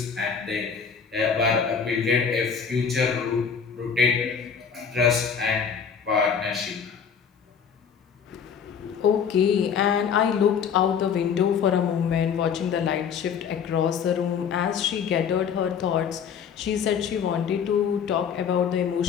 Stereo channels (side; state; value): right; quieter; 6.9 dB